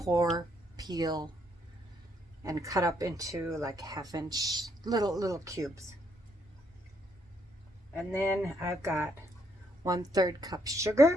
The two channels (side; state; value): both; normal; correlation 0.72